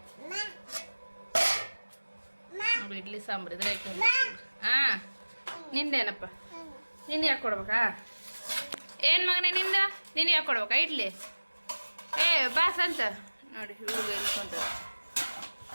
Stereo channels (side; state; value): both; inverted; correlation -1.00